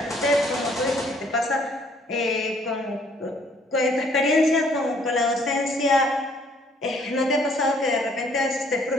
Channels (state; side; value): normal; both; correlation 0.62